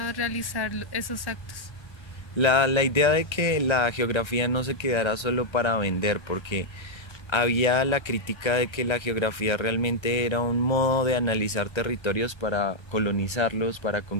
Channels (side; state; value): right; late; 1.3 ms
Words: realizar esos actos? La idea de que la geografía no se quedara solo para vender, porque había la crítica de que la geografía realmente era un modo de analizar territorios para colonizarlos, para